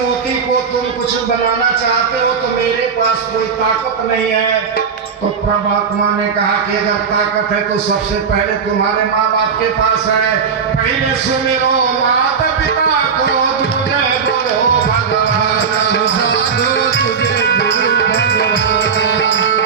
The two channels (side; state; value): left; quieter; 6.2 dB